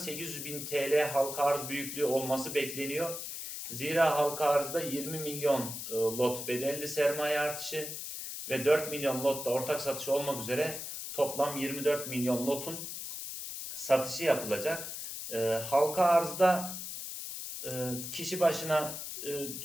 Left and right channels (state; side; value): noise; left; hiss, 7 dB below the sound